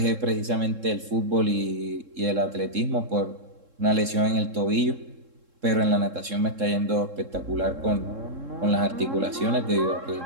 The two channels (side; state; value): left; late; 3.7 ms